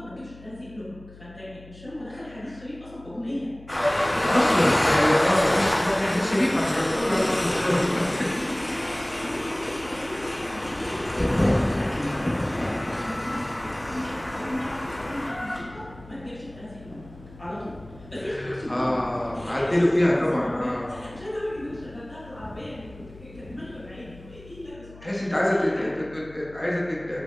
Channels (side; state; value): left; noise; hum, 20 dB below the sound